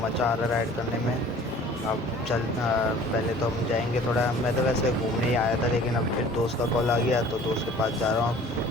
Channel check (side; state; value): both; normal; correlation 0.48